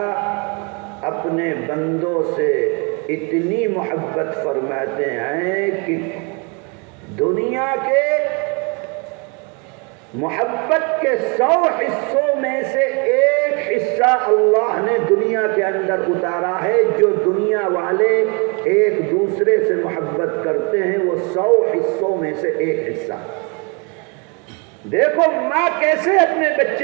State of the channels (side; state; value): left; quieter; 32.8 dB